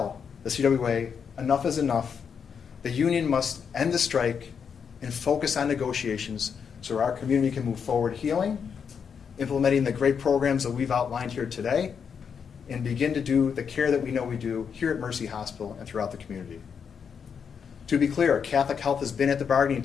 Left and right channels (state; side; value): quieter; right; 6.8 dB